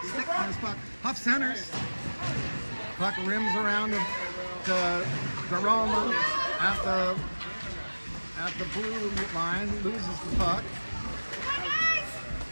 stick on his puck. Huff centers. Puck rims around to Roma at the blue line, loses the puck.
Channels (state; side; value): inverted; both; correlation -1.00